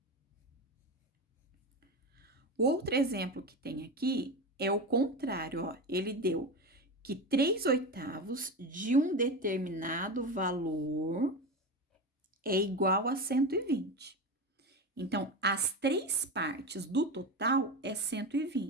O outro exemplo que tem aqui é o contrário, ó. Ele deu que 3/8 de um determinado valor é igual a 120. Então, as 3 partes do total é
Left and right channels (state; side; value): normal; both; correlation 0.21